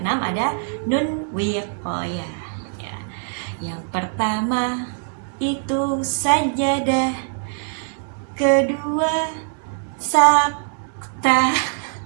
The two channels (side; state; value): left; silent; digital silence